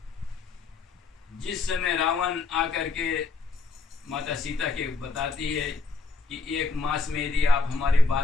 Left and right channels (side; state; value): right; quieter; 4.2 dB